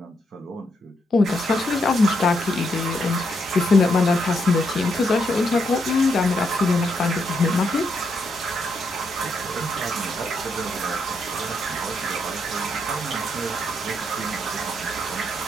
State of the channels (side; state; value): both; normal; correlation 0.78